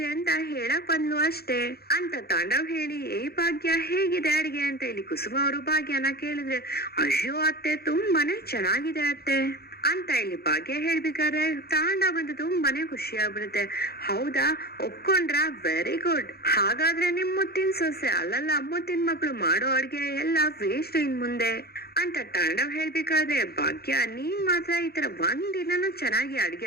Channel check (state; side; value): late; right; 0.46 ms